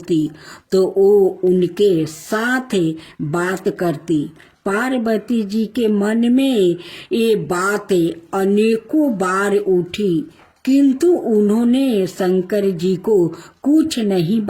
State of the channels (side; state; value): both; identical; correlation 1.00